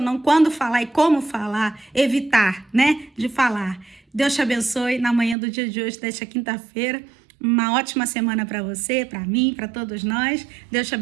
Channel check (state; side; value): drops out; left; at 5.4 s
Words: não, quando falar e como falar, evitar, né? De falar. Deus te abençoe na manhã do dia de hoje, desta quinta-feira. Uma ótima semana para você, para mim, para todos nós. Deus te